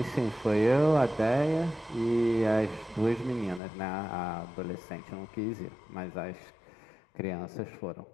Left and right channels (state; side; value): drops out; right; at 3.6 s